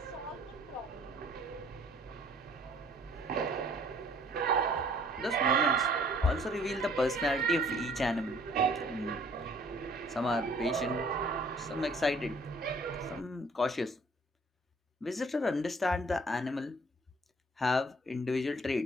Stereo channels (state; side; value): normal; both; correlation 0.57